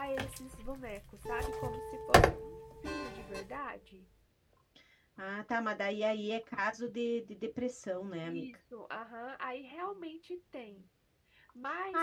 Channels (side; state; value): both; identical; correlation 1.00